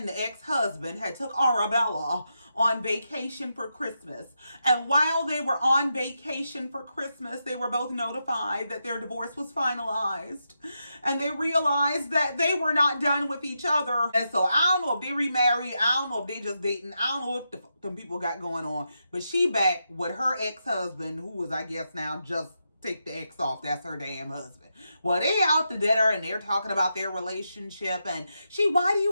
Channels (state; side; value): inverted; both; correlation -0.85